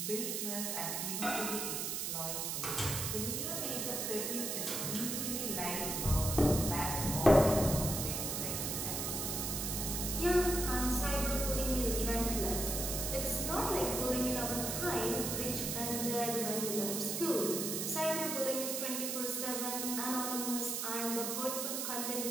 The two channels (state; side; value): noise; right; hiss, 1 dB below the sound